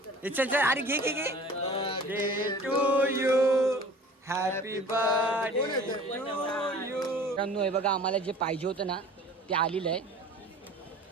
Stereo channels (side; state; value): both; normal; correlation 0.44